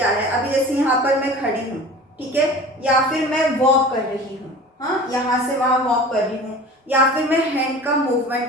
है, अभी जैसे यहाँ पर मैं खड़ी हूँ, ठीक है, या फिर मैं वॉक कर रही हूँ, हाँ, यहाँ से वहाँ वॉक कर रही हूँ, या फिर मैं हैंड का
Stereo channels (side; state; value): both; normal; correlation 0.39